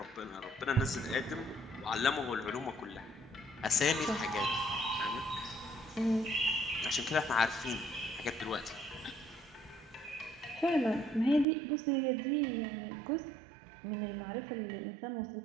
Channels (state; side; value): drops out; left; at 11.5 s